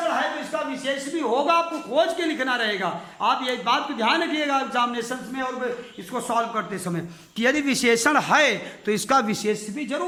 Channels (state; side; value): identical; both; correlation 1.00